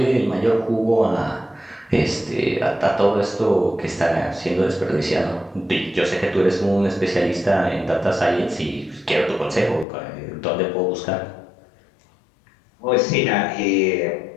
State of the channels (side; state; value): right; drops out; at 9.9 s